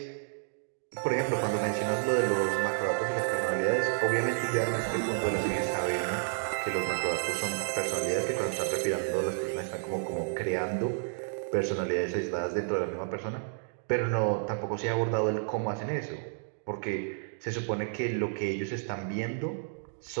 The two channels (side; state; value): left; silent; digital silence